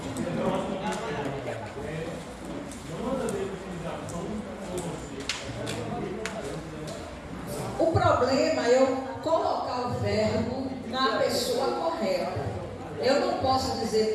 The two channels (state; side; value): identical; both; correlation 1.00